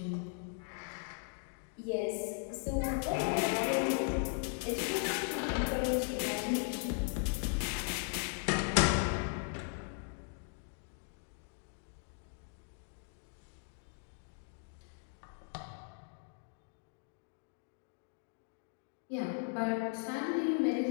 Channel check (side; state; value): right; silent; 52 dB below the other